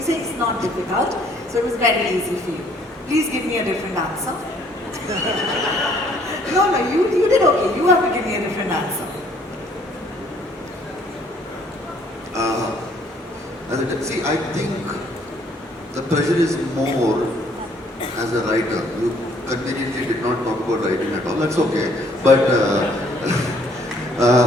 say it's not difficult, so it was very easy for you. Please give me a different answer. No, you did okay. You have to give me a different answer. See, I think the pressure is more as a writer. You conveniently did not talk about writing at all. That's okay. But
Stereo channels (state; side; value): normal; both; correlation 0.62